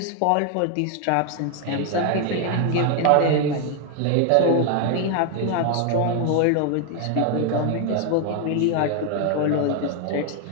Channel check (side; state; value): both; different; correlation 0.01